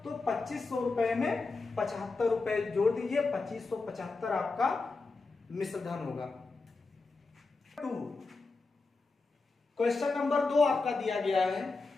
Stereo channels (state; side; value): quieter; right; 3.8 dB